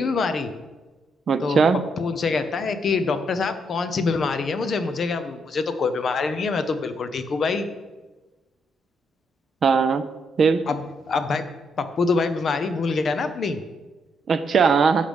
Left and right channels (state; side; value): normal; both; correlation 0.76